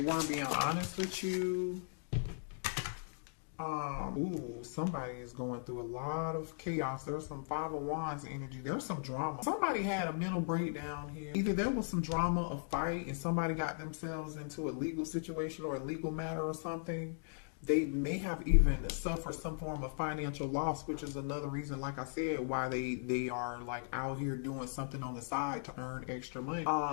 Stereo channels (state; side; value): silent; right; digital silence